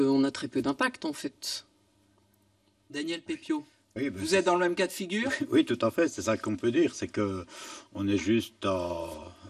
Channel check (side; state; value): both; identical; correlation 1.00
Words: a très peu d'impact en fait. Daniel Pépiot, oui, vous êtes dans le même cas de figure? Oui, tout à fait, c'est ça qu'on peut dire, c'est que on est juste